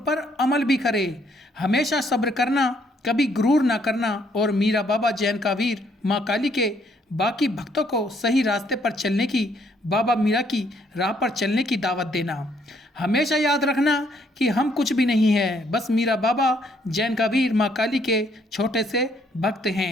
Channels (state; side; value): normal; both; correlation 0.68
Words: अमल भी करे। हमेशा सब्र करना, कभी गुरूर ना करना और मीरा बाबा जैन का वीर, माँ काली के बाकी भक्तों को सही रास्ते पर चलने की, बाबा मीरा की राह पर चलने की दावत देना। हमेशा याद रखना कि हम कुछ भी नहीं है, बस मीरा बाबा जैन का वीर, माँ काली के छोटे से भक्त